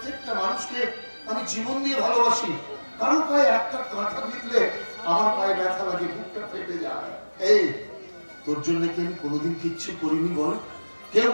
মানুষকে আমি জীবন দিয়ে ভালোবাসি। কারোর পায়ে একটা কাঁটা বিঁধলে আমার পায়ে ব্যথা লাগে, বুকটা ফেটে যায়। এই তোর জন্য কি আমি কোনোদিন কিচ্ছু করিনি বল? কেউ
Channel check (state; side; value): inverted; both; correlation -1.00